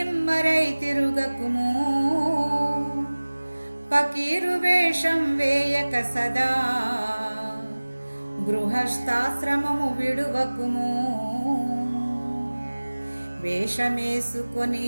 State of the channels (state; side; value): inverted; both; correlation -1.00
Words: తిరుగకుము. పకీరు వేషం వేయక సదా, గృహస్థాశ్రమము విడువకుము. వేషమేసుకొని